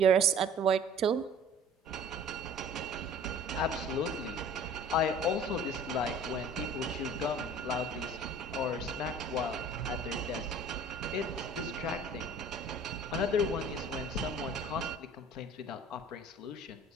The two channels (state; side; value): normal; both; correlation 0.47